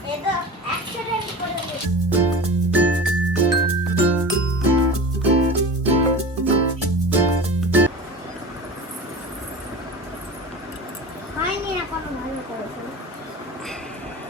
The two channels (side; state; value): both; normal; correlation 0.34